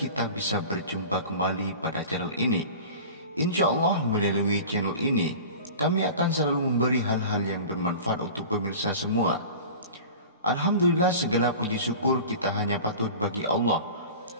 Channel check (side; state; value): both; inverted; correlation -0.37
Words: bisa berjumpa kembali pada channel ini. Insya Allah melalui channel ini kami akan selalu memberi hal-hal yang bermanfaat untuk pemirsa semua. Alhamdulillah, segala puji syukur kita hanya patut bagi Allah.